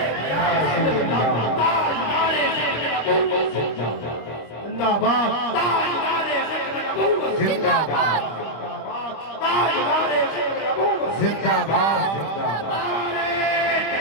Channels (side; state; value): right; late; 25 ms